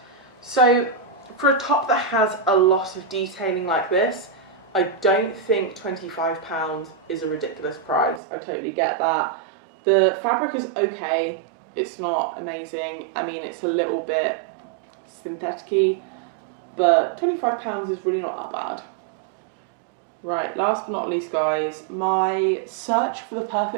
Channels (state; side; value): drops out; left; at 8.2 s